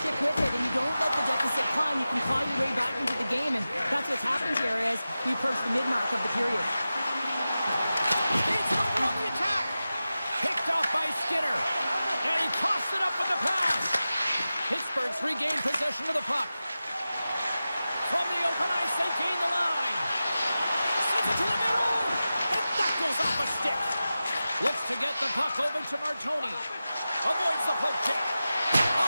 stick with it and you don't let the deficit climb, you can claw your way back into the game. And that's what's happened here as we approach the mid-mark of the period. Beats it over on the attack. Picked off by Skinner. And he tossed it up with the pass. Pittsburgh's regained possession of the puck. From the open ice, they gain the line. Sends it to the middle. And that goes off a stick. Looks to get the puck over to Martoni. Avoids the poke check.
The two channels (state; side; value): inverted; both; correlation -0.94